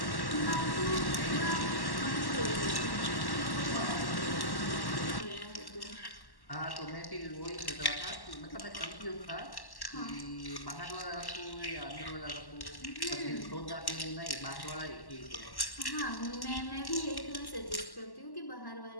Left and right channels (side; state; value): right; late; 1.1 ms